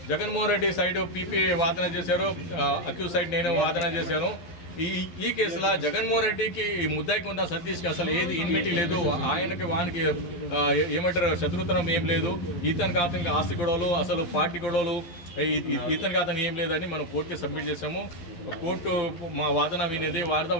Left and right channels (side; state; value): right; late; 11 ms